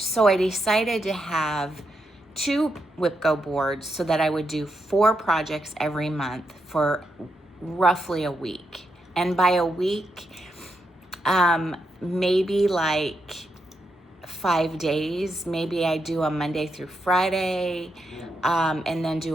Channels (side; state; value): both; normal; correlation 0.83